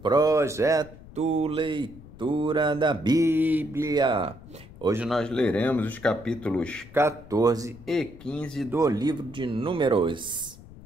Leitura da Bíblia. Hoje nós leremos os capítulos 14 e 15 do livro de Números.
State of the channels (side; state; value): left; noise; rumble, 19 dB below the sound